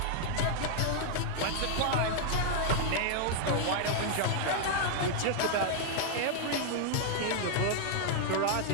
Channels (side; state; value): both; different; correlation 0.00